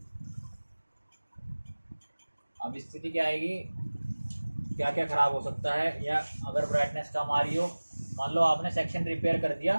अब स्थिति क्या आएगी, क्या क्या खराब हो सकता है, या अगर ब्राइटनेस कम आ रही हो, मान लो आपने सेक्शन रिपेयर कर दिया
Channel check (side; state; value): both; inverted; correlation -1.00